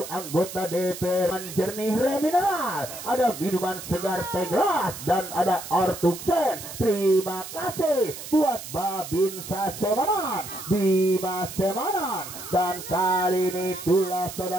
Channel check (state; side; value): noise; right; hiss, 11 dB below the sound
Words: anggota DPR. Jernih Remineral, ada minuman segar teh gelas dan ada Ortuksen. Terima kasih buat Babinsa Semanan, Bima Semanan, dan kali ini